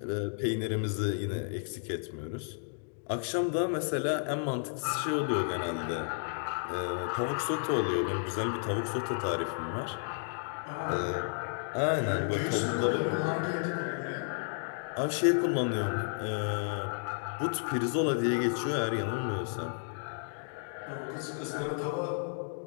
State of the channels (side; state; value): right; silent; digital silence